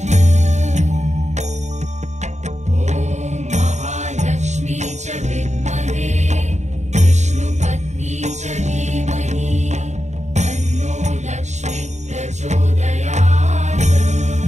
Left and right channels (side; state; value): left; late; 0.34 ms